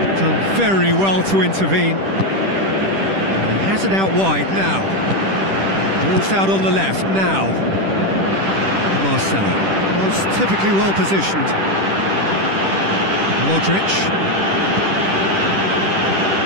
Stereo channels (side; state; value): left; late; 10 ms